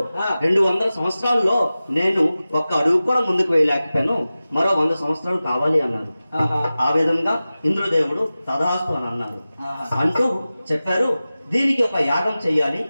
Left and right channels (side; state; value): both; inverted; correlation -0.96